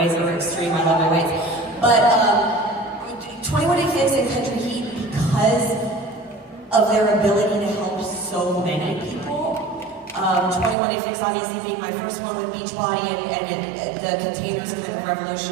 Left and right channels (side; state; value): left; drops out; at 10.8 s